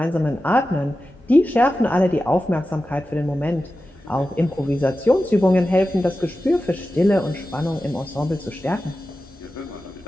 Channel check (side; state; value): both; normal; correlation 0.93